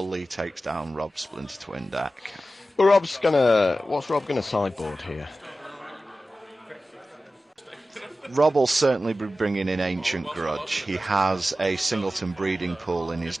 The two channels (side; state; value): both; normal; correlation 0.94